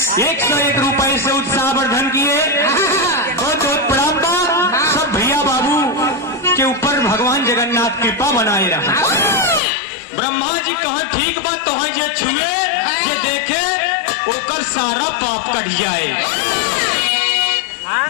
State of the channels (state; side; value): drops out; right; at 9.6 s